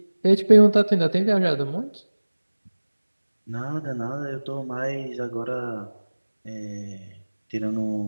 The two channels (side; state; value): both; inverted; correlation -1.00